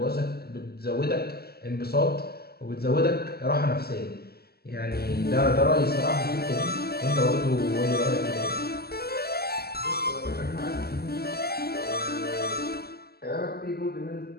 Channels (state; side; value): late; right; 0.46 ms